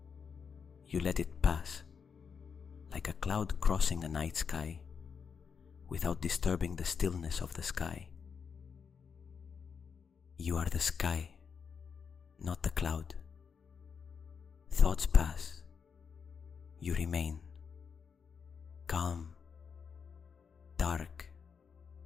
You let it pass, like a cloud crossing a night sky, without disturbing the stillness of the sky. You are the sky, not the cloud. Thoughts pass. You remain calm, dark,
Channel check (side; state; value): right; quieter; 6.2 dB